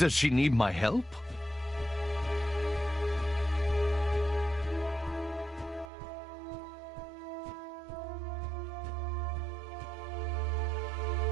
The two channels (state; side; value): drops out; left; at 5.9 s